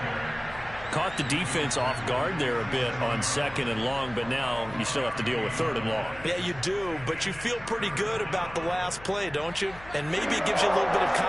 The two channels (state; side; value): noise; left; hum, 18 dB below the sound